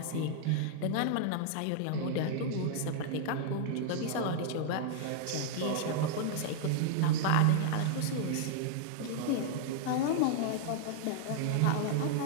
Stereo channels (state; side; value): different; both; correlation -0.01